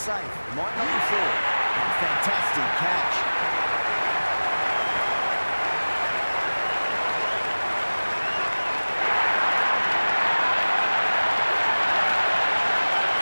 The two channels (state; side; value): inverted; both; correlation -1.00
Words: Might not be full. Fantastic catch.